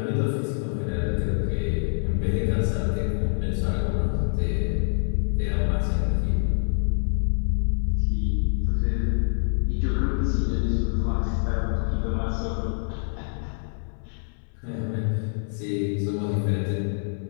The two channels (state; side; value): silent; right; 61 dB below the other